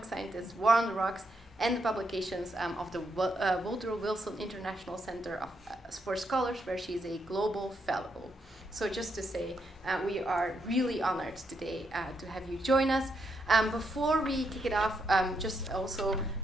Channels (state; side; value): normal; both; correlation 0.79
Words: Scientists, War on the Rocks, and the publications of the Woodrow Wilson International Center for Scholars, where she is a global fellow. So just to say, we are really honored today to have you join us. Before we kick it off, just also